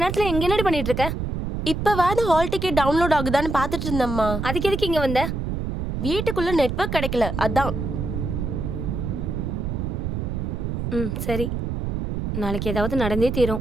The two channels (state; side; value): noise; right; rumble, 3 dB below the sound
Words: எங்க என்னடி பண்ணிட்டு இருக்க? இப்பவாது ஹால் டிக்கெட் டவுன்லோட் ஆகுதான்னு பார்த்துட்டு இருந்தம்மா. அதுக்கு எதுக்கு இங்க வந்த? வீட்டுக்குள்ள நெட்வொர்க் கிடைக்கல, அதான். சரி. நாளைக்கு ஏதாவது நடந்தே